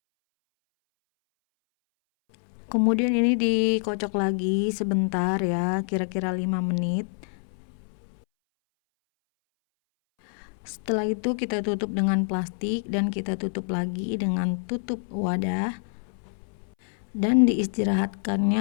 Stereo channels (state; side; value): silent; right; 61 dB below the other